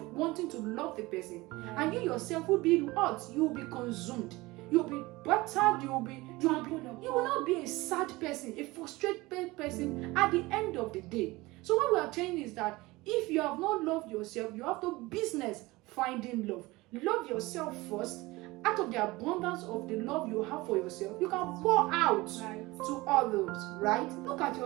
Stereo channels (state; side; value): quieter; left; 21.1 dB